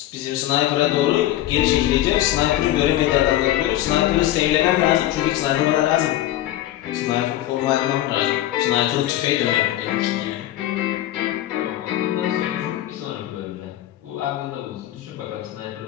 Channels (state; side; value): quieter; right; 14.0 dB